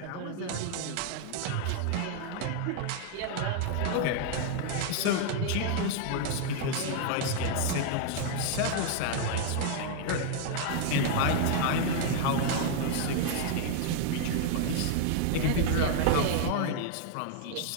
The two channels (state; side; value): different; both; correlation 0.00